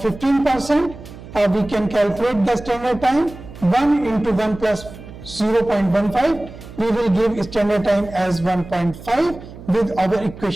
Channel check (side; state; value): right; noise; hum, 16 dB below the sound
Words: We can calculate the standard time. 1 into 1 plus 0.15, we will give standard time as 1.5 with our